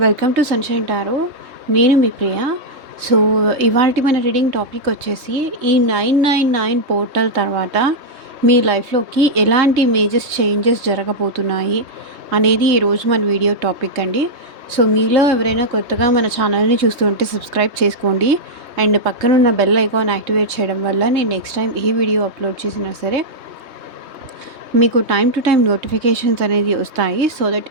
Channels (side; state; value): left; late; 3.2 ms